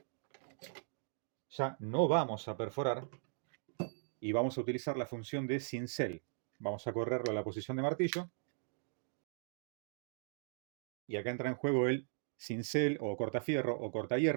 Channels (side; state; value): left; silent; digital silence